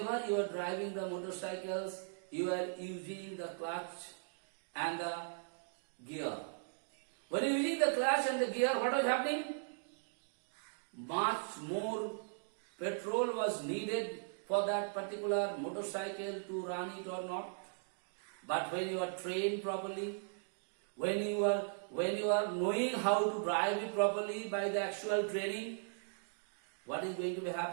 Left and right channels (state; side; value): silent; left; digital silence